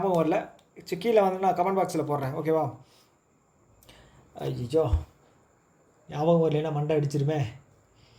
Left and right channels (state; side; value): identical; both; correlation 1.00